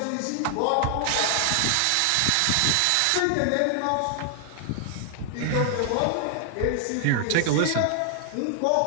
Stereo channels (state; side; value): different; both; correlation 0.00